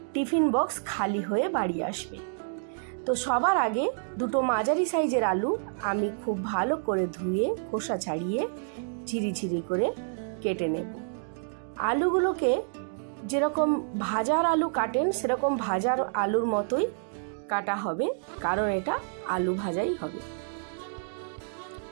টিফিন বক্স খালি হয়ে বাড়ি আসবে। তো সবার আগে দুটো মাঝারি সাইজের আলু আমি খুব ভালো করে ধুয়ে খোসা ছাড়িয়ে ঝিরিঝিরি করে কেটে নেব। আলুগুলোকে যেরকম ভাজার আলু কাটেন সেরকম ভাজার আলুর মতোই কাটা হবে, কারণ এটা আলু ভাজাই হবে।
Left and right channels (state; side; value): silent; left; digital silence